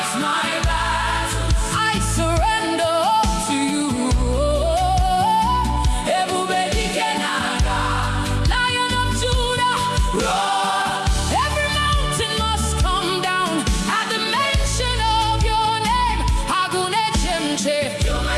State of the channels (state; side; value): identical; both; correlation 1.00